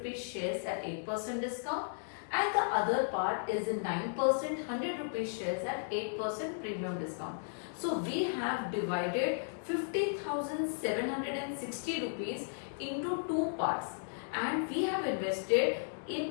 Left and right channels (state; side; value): silent; right; digital silence